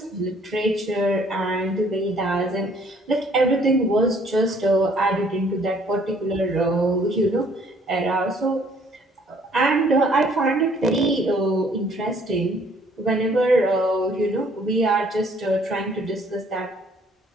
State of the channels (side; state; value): both; normal; correlation 0.61